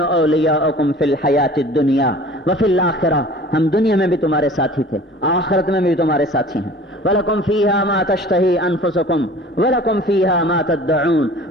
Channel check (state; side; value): normal; both; correlation 0.45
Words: فی الحیاۃ الدنیا وفی الآخرہ، ہم دنیا میں بھی تمہارے ساتھی تھے، آخرت میں بھی تمہارے ساتھی ہیں۔ وَلَكُمْ فِيهَا مَا تَشْتَهِي أَنفُسُكُمْ وَلَكُمْ فِيهَا مَا تَدَّعُونَ،